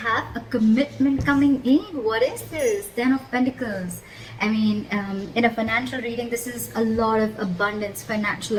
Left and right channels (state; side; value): identical; both; correlation 1.00